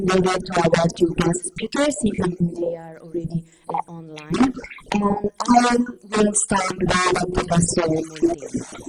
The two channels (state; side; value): identical; both; correlation 1.00